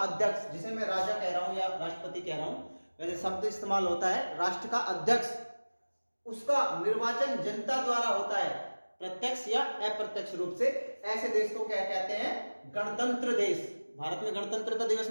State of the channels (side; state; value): both; inverted; correlation -1.00